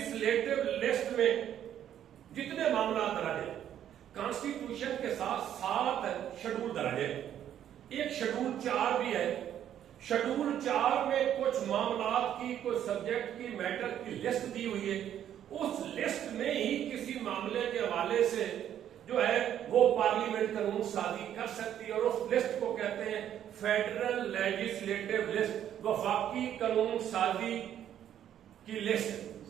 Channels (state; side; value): quieter; left; 10.4 dB